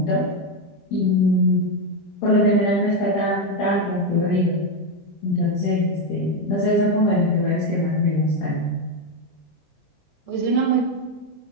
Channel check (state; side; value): late; right; 20 ms